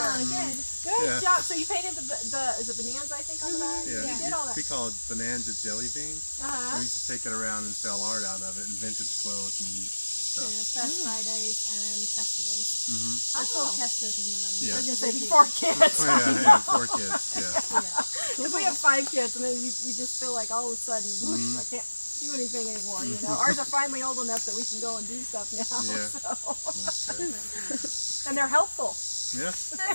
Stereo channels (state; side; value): inverted; both; correlation -1.00